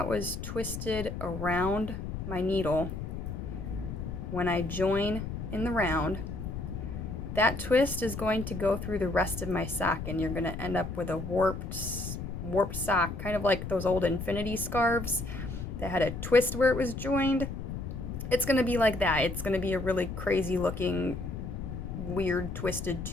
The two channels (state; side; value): noise; left; rumble, 6 dB below the sound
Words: was twisted around my needle when I join in the round, that twist is going to go through the rest of my sock, and you're going to end up with a warped sock, kind of like those old infinity scarves that had a twist where it was joined. It's going to be like that. It's going to be a really crazy looking, weird twisted